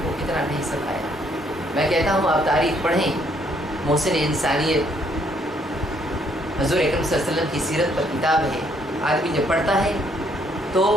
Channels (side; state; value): both; normal; correlation 0.68